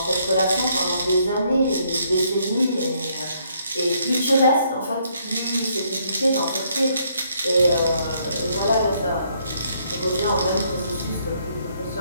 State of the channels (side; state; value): both; inverted; correlation -0.70